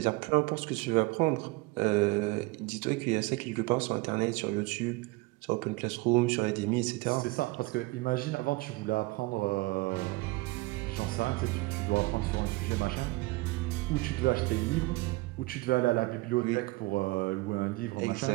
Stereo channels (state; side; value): quieter; left; 22.4 dB